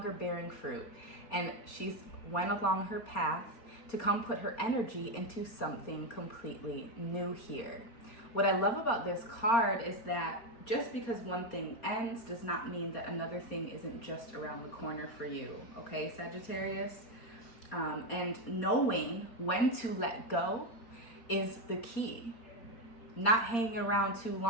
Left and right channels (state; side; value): late; right; 4.3 ms